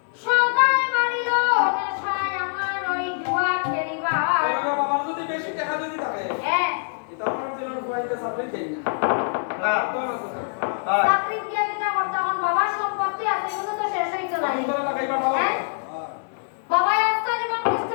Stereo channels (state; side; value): silent; right; digital silence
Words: সদাই মারিল নেশায় আমার ওই জুয়া খেলিবার বাবা যদি বেশি টাকা যদি থাকে হ্যাঁ তখন তোমার বইতে সাবমিট দেই না তো না তো চাকরি দিয়া দিতা তখন বাবার সম্পত্তি আছে এগুলো তো শেষ হইতো না সুন্দর লাগাইবা দাও বাবা একটা জীবন কষ্ট